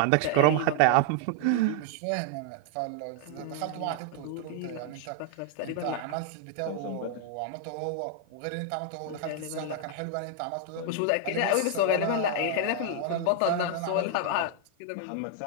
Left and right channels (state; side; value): different; both; correlation 0.00